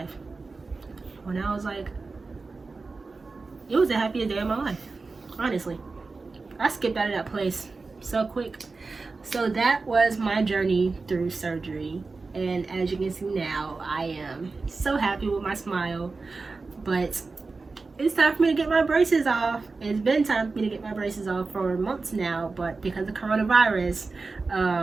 When I was like, it was the happiest day of my life. Honestly. I skipped out of that place so quick. So that was my journey through surgery. And as you can see now, I am so happy with my smile. But it's time for me to get my braces off. It's been time for me to get my braces off for months now, but because of coronavirus,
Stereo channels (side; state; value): left; quieter; 4.0 dB